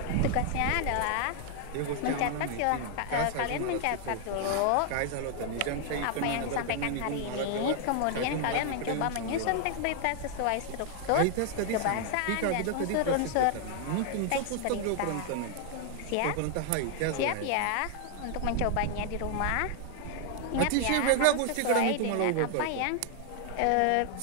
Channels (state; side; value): different; both; correlation 0.00